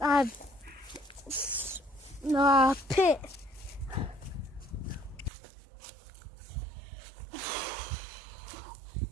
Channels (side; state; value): left; drops out; at 5.3 s